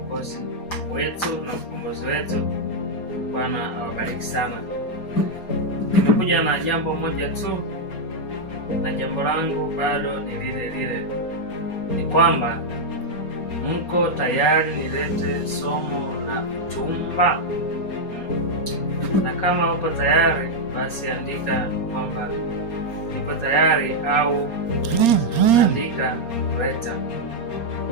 wetu na mkombozi wetu. Bwana awabariki sana. Nimekuja na jambo moja tu, na jambo langu bado ni lile lile, ni kwamba mko tayari nilete somo la uchumba? Na kama uko tayari, basi andika kwamba niko tayari, au andika leta,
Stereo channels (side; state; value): right; late; 4.3 ms